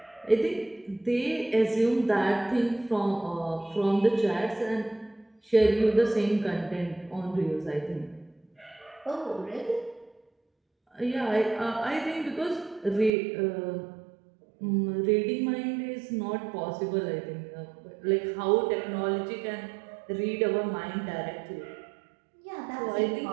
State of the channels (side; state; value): left; drops out; at 13.1 s